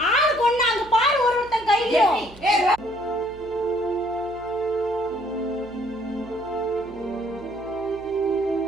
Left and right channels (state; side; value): noise; right; hum, 20 dB below the sound